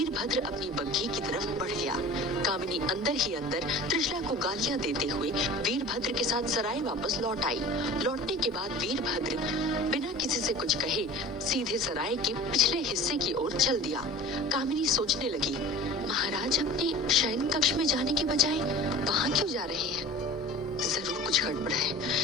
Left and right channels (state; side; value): normal; both; correlation 0.40